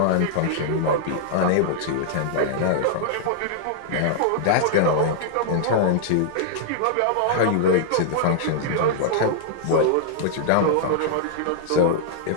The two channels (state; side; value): different; both; correlation -0.01